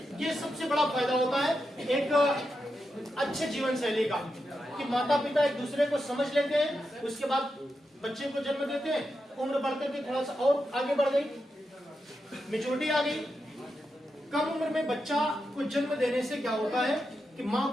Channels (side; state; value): both; normal; correlation 0.87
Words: ये सबसे बड़ा फायदा होता है एक अच्छे जीवन शैली का, कि माता पिता एक दूसरे को समझ लेते हैं, उसके बाद बच्चे को जन्म देते हैं, उम्र बढ़ते थे थोड़ा सा और आगे बढ़ गई, मैच्योरिटी आ गई। कम उम्र में बच्चा को जन्म देने से क्या होता है कि माँ